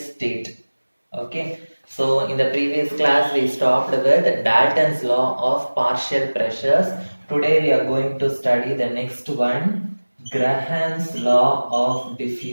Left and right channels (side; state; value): both; inverted; correlation -1.00